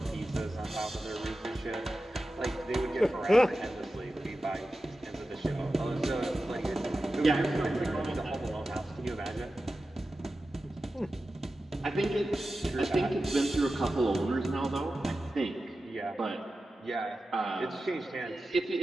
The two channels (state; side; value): normal; both; correlation 0.93